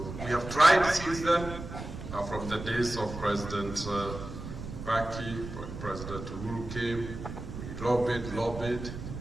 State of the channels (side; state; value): right; noise; rumble, 9 dB below the sound